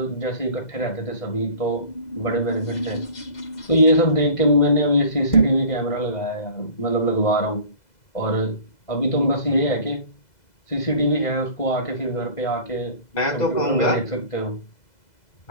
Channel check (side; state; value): right; late; 2.0 ms